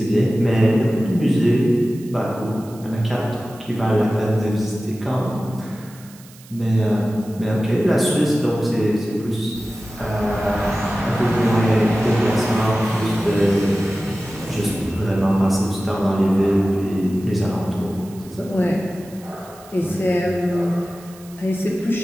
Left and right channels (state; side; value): noise; right; hiss, 23 dB below the sound